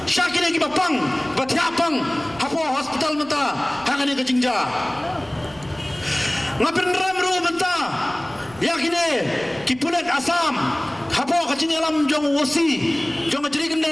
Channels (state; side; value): noise; right; rumble, 24 dB below the sound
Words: syakir ki bapang batiapang hapo hospital menta hakane ke jingja ngapin ramru menta yakine ki pulet asam hapo kacing alam jong wosi jong jadi